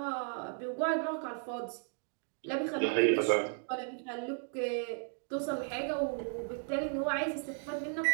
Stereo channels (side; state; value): left; silent; 55 dB below the other